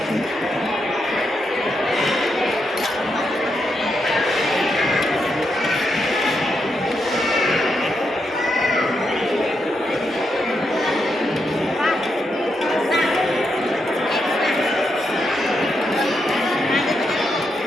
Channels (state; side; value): normal; both; correlation 0.82